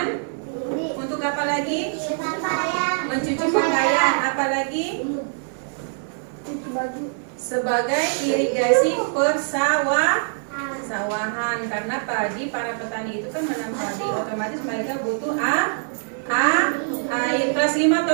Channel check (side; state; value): left; silent; digital silence